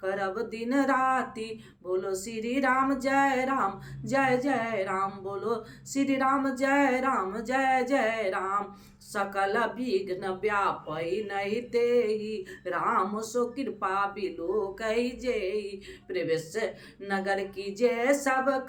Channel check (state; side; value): identical; both; correlation 1.00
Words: करब दिन राति। बोलो श्री राम जय राम जय जय राम, बोलो श्री राम जय राम जय जय राम। सकल विघ्न व्यापै नहीं तेहि, राम सो कृपा बिलो कही जेहि। प्रवेश नगर की जय सब